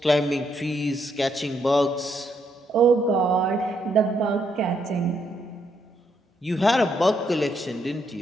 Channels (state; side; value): normal; both; correlation 0.76